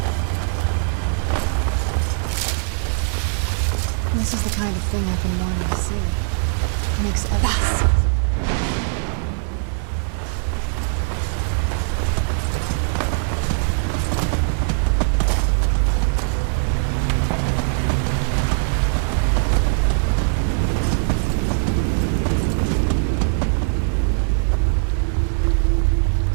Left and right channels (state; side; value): silent; left; 58 dB below the other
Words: This is the kind of thing I've been wanting to see. It makes everything.